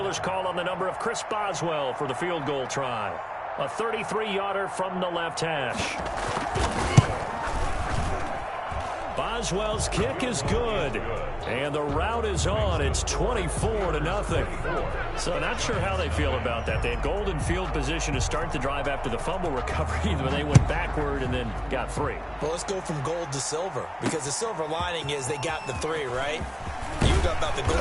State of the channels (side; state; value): both; identical; correlation 1.00